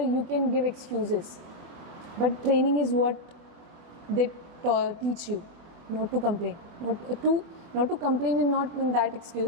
can give excuses. But training is what they teach you, not to complain. Not to complain and not in that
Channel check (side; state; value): left; late; 24 ms